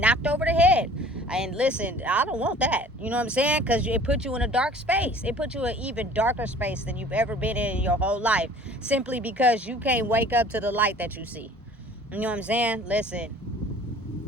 over the head. And listen, I don't want that. You know what I'm saying? Because it puts you in a dark space. It puts you in an even darker space than you've ever been in your whole life. Simply because you can't wake up to the light that you see. You know what I'm saying?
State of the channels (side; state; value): both; normal; correlation 0.49